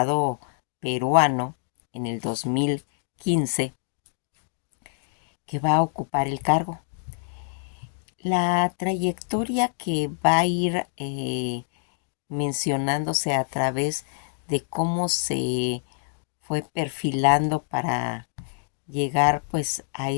peruano en el 2015 que va a ocupar el cargo. La trayectoria que va a ir mencionándose a través de cómo se fue perfilando para llegar pues a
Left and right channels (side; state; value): right; silent; digital silence